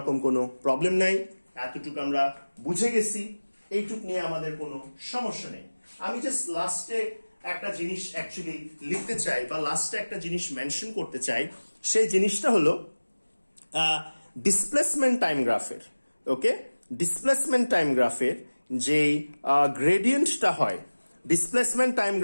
কোনো problem নাই, এতটুকু আমরা বুঝে গেছি, এইটুক নিয়ে আমাদের কোনো সমস্যা নেই। আমি জাস্ট লাস্টে একটা জিনিস অ্যাকচুয়ালি লিখতে চাই বা লাস্টে একটা জিনিস মেনশন করতে চাই, সেই জিনিসটা হলো ডিসপ্লেসমেন্ট টাইম গ্রাফের। ওকে, ডিসপ্লেসমেন্ট টাইম গ্রাফের যে গ্রেডিয়েন্টটা হয়, ডিসপ্লেসমেন্ট টাইম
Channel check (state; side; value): inverted; both; correlation -1.00